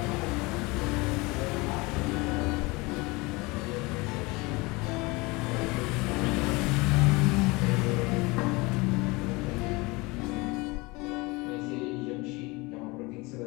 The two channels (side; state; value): right; quieter; 24.6 dB